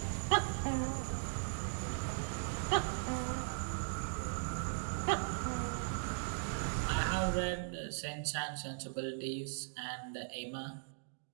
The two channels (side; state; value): left; silent; digital silence